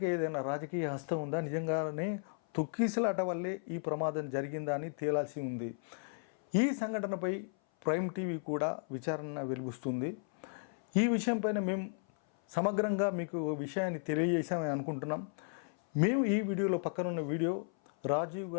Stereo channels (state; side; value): silent; right; 55 dB below the other